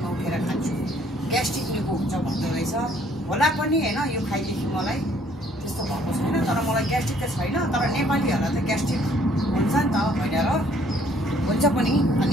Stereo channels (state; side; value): normal; both; correlation 0.62